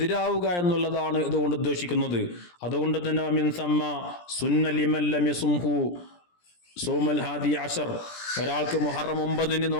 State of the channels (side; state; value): right; late; 17 ms